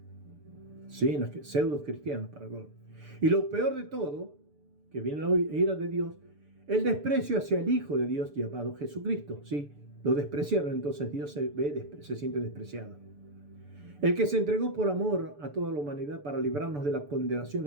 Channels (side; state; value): left; late; 6.9 ms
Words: sí, en las pseudo cristianas para colmo. Y lo peor de todo, que viene la ira de Dios, el desprecio hacia el Hijo de Dios llamado Jesucristo, sí, lo despreciaron, entonces Dios se siente despreciado. El que se entregó por amor a toda la humanidad para librarnos de la condenación